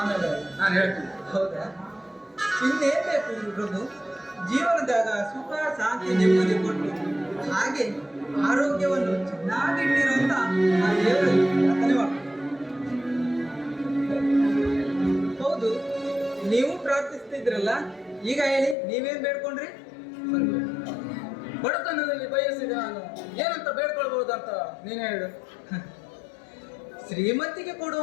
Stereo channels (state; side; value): drops out; right; at 18.8 s